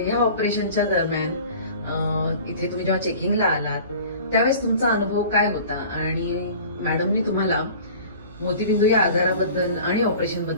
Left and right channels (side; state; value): both; inverted; correlation -0.43